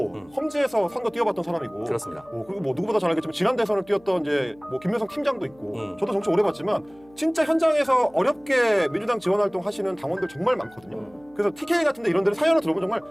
험지에서 선거 뛰어봤던 사람이고 그렇습니다. 그리고 뭐 누구보다 잘 알겠지만 지난 대선을 뛰었던 이제 뭐 김명성 팀장도 있고 저도 정치 오래 봤지만 진짜 현장에서 어렵게 민주당 지원 활동 하시는 당원들 정말 많거든요. 그래서 TK 같은데 이런 데를 사연을 들어보면 정말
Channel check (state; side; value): noise; left; hum, 27 dB below the sound